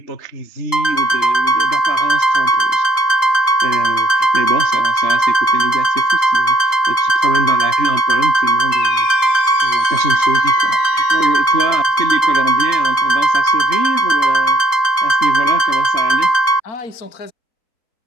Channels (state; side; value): late; right; 3.8 ms